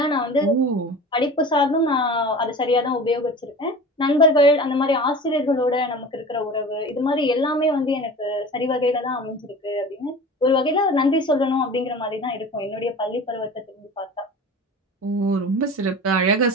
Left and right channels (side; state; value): both; normal; correlation 0.37